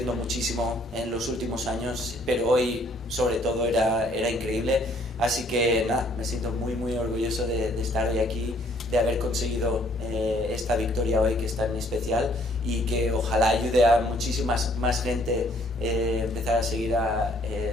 muchísimo en los últimos años, pero hoy sobre todo era increíble. Así que nada, me siento muy orgulloso de estar hoy aquí, de haber conseguido esta victoria hoy que es tan especial, y que ojalá ayude a muchísimas más gente empezar a seguir a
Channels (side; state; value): both; normal; correlation 0.63